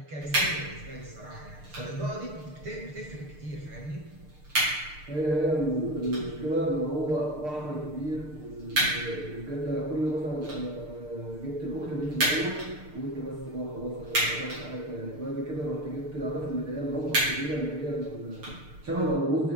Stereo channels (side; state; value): left; late; 6.6 ms